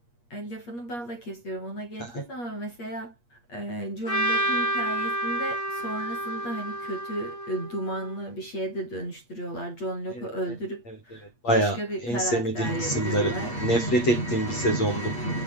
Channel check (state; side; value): late; right; 8.4 ms